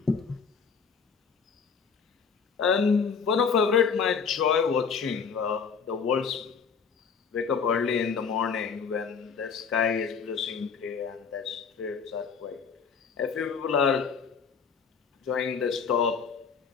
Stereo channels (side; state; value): right; quieter; 6.0 dB